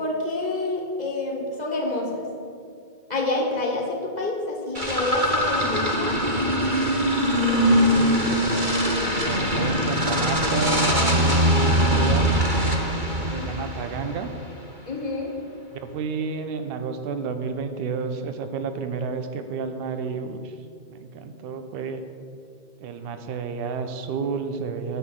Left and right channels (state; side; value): late; left; 2.3 ms